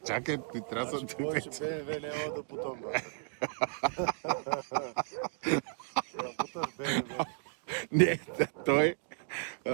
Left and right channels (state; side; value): silent; left; 55 dB below the other